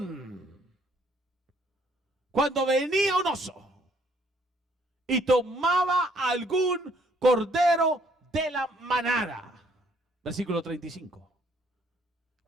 cuando venía un oso y tomaba algún cordero de la manada, versículo 35,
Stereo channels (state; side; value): normal; both; correlation 0.65